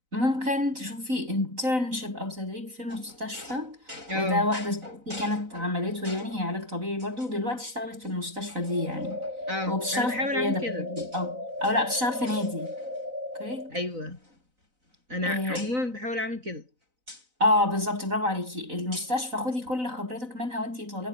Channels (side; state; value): left; late; 4.0 ms